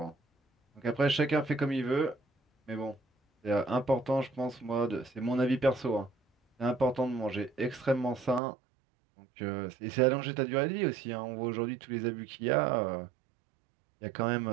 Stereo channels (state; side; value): drops out; left; at 8.4 s